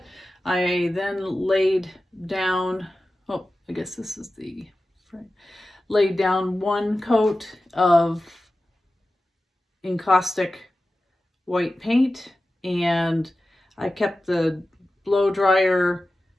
I then laid down, oh, I guess this is the frame, laid down one coat of encaustic white paint, and I kept the blow dryer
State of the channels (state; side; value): normal; both; correlation 0.94